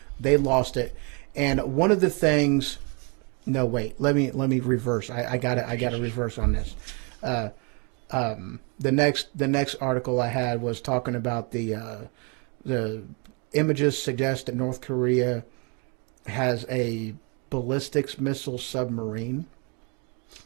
They lost it. And one of the things, no, wait, let me reverse. I got to reverse on this. The next article I had was talking about the images suggest that North Korea has a ballistics missile submarine,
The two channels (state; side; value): quieter; left; 33.3 dB